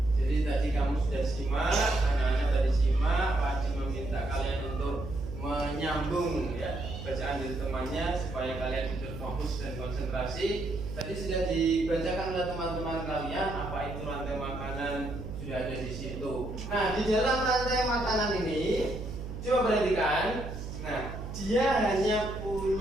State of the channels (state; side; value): noise; right; hum, 8 dB below the sound